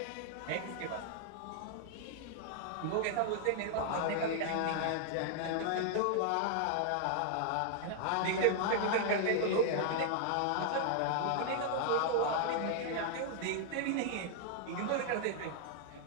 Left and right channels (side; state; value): both; different; correlation 0.00